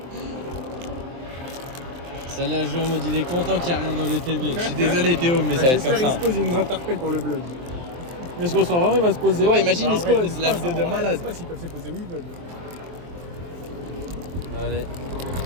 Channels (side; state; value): left; late; 23 ms